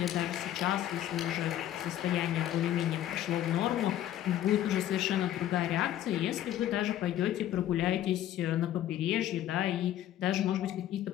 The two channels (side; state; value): right; quieter; 12.2 dB